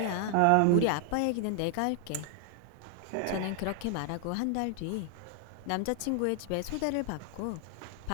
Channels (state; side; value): different; both; correlation 0.00